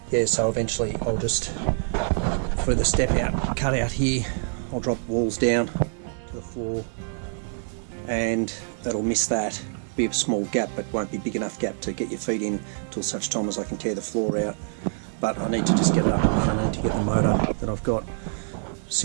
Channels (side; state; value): left; silent; 61 dB below the other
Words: Yeah, so eventually I'll just, for the step out, cut out here, I'll drop walls down to the floor, and that'll miss that. Be a small gap, but won't be big enough gap to get your feet in till such time as I can tear the floor out. But I need to just get it up and running. I need to get the motor that I've got